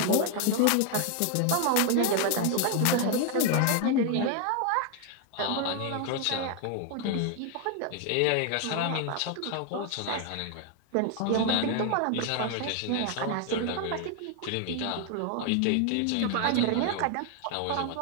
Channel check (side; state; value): both; different; correlation 0.01